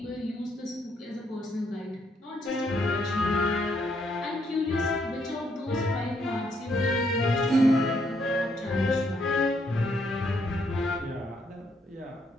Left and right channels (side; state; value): both; normal; correlation 0.73